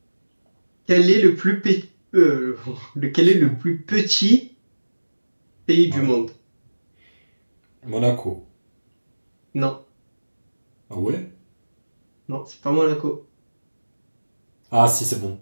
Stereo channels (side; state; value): both; inverted; correlation -1.00